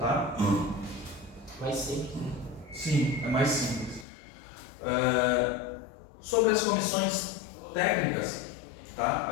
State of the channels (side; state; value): right; drops out; at 4.0 s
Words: Mais simples. Sim, é mais simples. Sobre as comissões técnicas, tá?